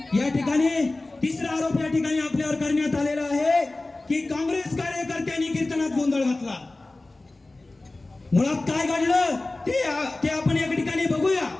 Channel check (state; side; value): quieter; right; 3.0 dB